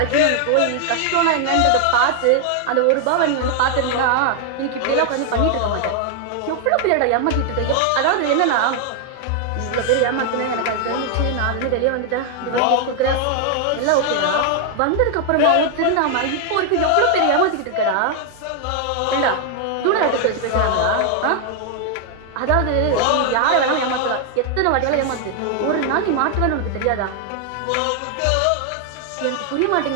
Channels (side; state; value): both; different; correlation 0.00